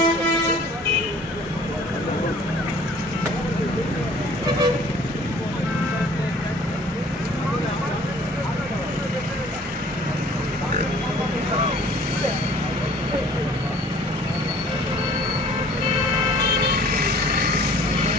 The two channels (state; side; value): normal; both; correlation 0.52